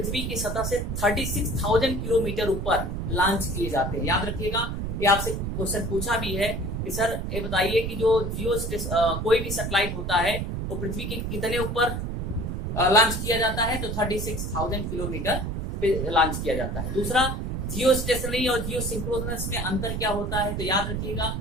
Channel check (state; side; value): noise; right; rumble, 3 dB below the sound